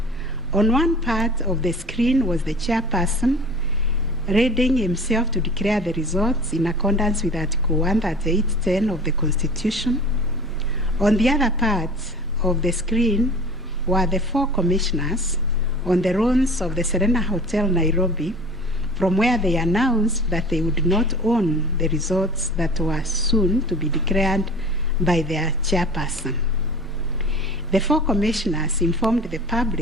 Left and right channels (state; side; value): normal; both; correlation 0.41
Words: On one part of the screen was the chairperson readying himself to declare the results in accordance with Article 138(10) of the Constitution. On the other part of the screen were the 4 commissioners on the ruins of the Serena Hotel, Nairobi, from where they announced that they would not own the results that were soon to be declared by their chairperson. The 4 commissioners informed the